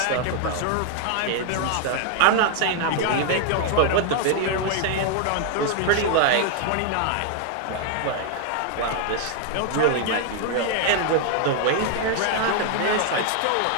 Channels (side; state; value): both; different; correlation 0.00